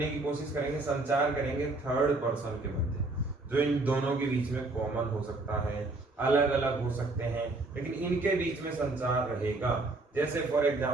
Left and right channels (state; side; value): quieter; left; 3.1 dB